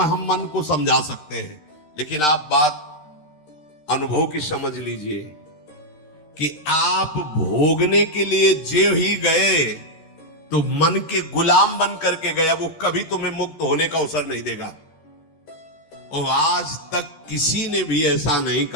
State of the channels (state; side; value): late; right; 13 ms